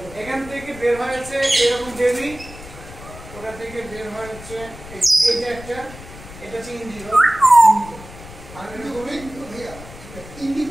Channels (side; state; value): left; noise; rumble, 16 dB below the sound